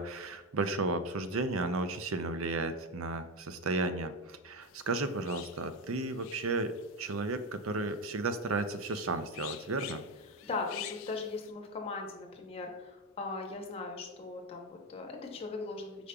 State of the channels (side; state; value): both; normal; correlation 0.13